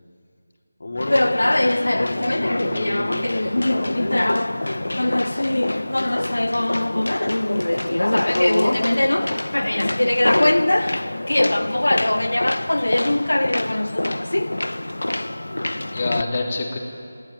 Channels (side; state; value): both; inverted; correlation -0.99